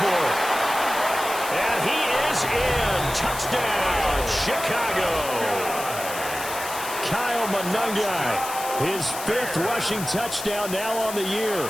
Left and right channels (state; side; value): noise; left; hiss, 9 dB below the sound